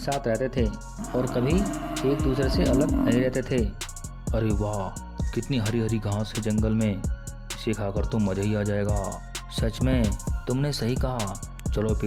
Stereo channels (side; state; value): both; identical; correlation 1.00